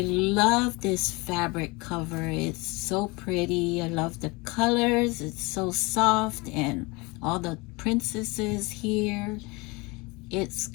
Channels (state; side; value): quieter; right; 25.8 dB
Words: love this fabric cover. It's so pretty. I love the colors. It's so soft, and all the princesses here. It's